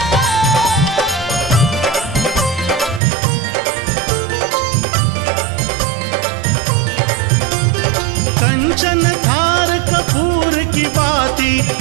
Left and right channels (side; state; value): left; drops out; at 3.0 s